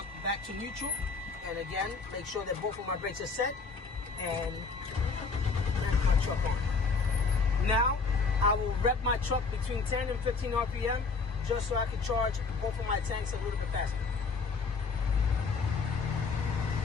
back to neutral, and again, make sure that both of my brakes are set, and turn my truck on. Now I will rev my truck between 10 and 15 RPM, just so I can charge both of my tanks a little bit faster.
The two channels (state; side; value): quieter; right; 4.5 dB